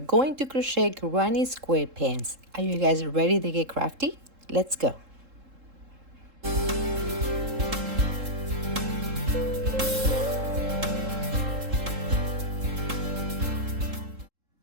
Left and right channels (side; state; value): left; late; 3.7 ms